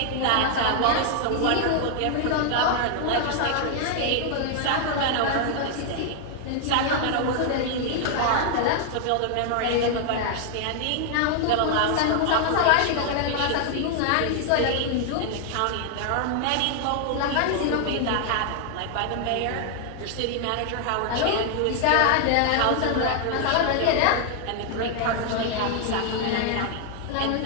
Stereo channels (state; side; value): different; both; correlation 0.00